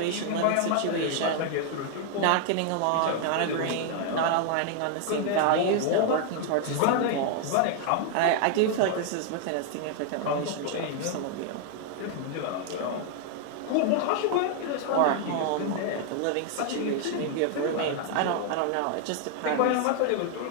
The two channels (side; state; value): both; different; correlation 0.00